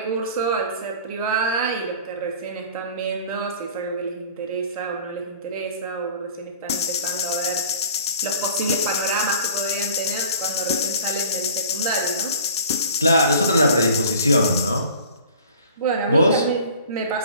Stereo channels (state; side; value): inverted; both; correlation -0.46